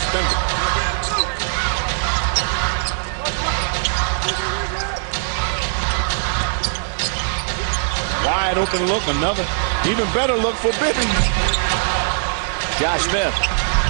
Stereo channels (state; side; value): silent; left; digital silence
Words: wide open look. Another even better look for Bibby. J.Smith.